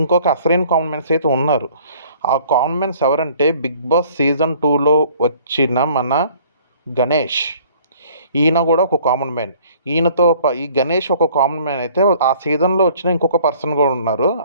ఇంకొక అసలైన కామన్ మ్యాన్స్ అయితే ఉన్నారు. ఆ కామన్ మ్యాన్స్ ఎవరంటే బిగ్ బాస్ సీజన్ 2లో వచ్చిన మన గణేష్. ఈయన కూడా ఒక కామన్ మ్యాన్. ఈ గణేష్ ఒక కామన్ మ్యాన్ అయితే, ఆ సీజన్లో వచ్చిన ఇంకొక పర్సన్ కూడా ఉన్నారు,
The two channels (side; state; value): both; inverted; correlation -0.55